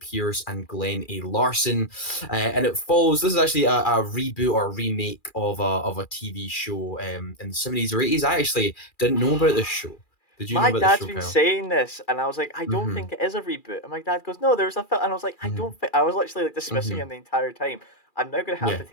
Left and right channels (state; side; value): late; right; 2.4 ms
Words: and Glenn A. Larson. And it follows. This is actually a reboot or a remake of a TV show in the 70s or 80s. I actually didn't know about this show. Did you know My about this dad's show, been Kyle? saying this, and I was like, I don't Mm-hmm. think it is a reboot. And my dad goes, No, there's a film. And I was like, I Mm-hmm. don't think. I was literally like dismissing Mm-hmm. him the entire time. I'm now gonna have Yeah, to